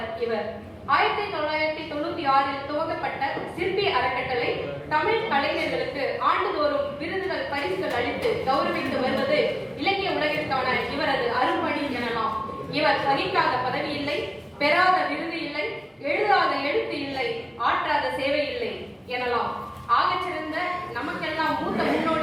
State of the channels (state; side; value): identical; both; correlation 1.00